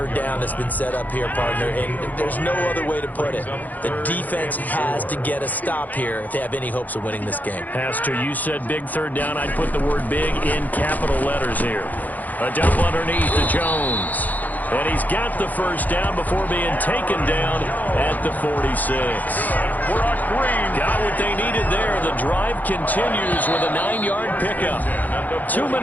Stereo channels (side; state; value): right; late; 0.082 ms